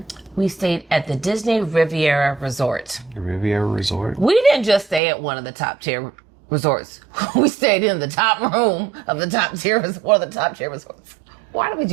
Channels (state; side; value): drops out; left; at 5.0 s